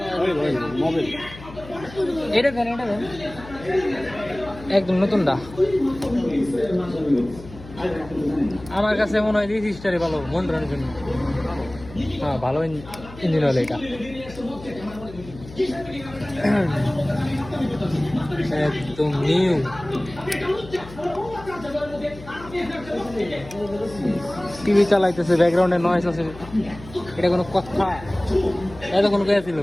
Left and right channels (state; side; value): noise; left; hum, 16 dB below the sound